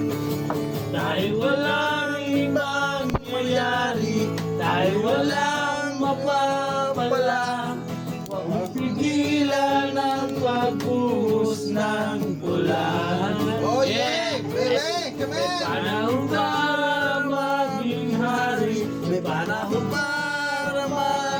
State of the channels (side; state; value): both; identical; correlation 1.00